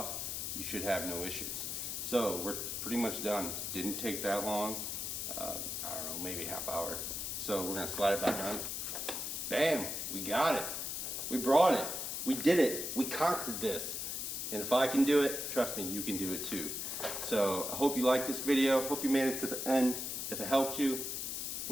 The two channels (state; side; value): noise; left; hiss, 3 dB below the sound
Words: you should have no issues. So we're pretty much done. Didn't take that long. I don't know, maybe half hour. So we're gonna slide it back on. Bam, we got it. We brought it. We did it. We conquered this. And if I can do it, trust me, you can do it too. So I hope you liked this video. Hope you made it to the end. If it helped you,